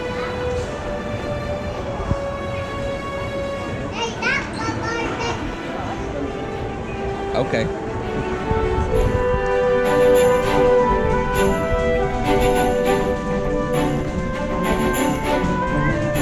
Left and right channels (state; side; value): identical; both; correlation 1.00